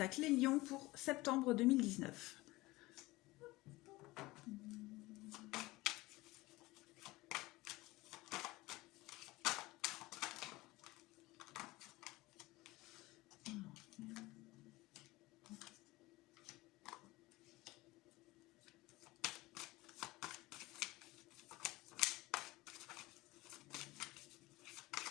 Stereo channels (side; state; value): right; quieter; 20.2 dB